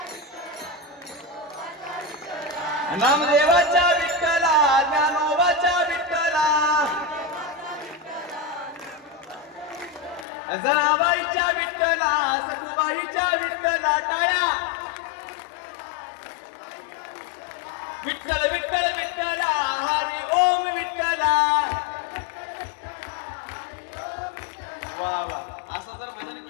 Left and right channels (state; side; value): drops out; right; at 10.2 s